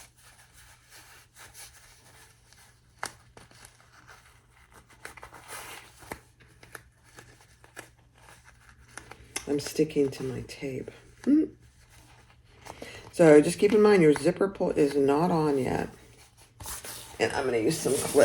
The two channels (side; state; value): both; identical; correlation 1.00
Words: I'm sticking to my tape. So just keep in mind your zipper pull is not on yet. And I'm going to use some